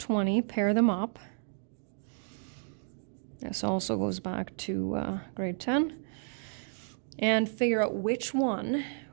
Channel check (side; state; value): left; silent; digital silence